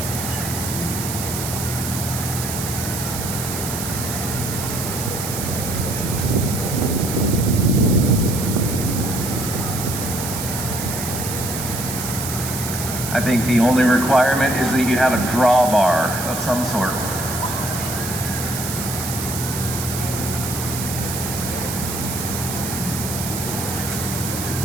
I think the only requirement is that you have a drawbar of some sort.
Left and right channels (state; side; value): noise; right; hiss, 5 dB below the sound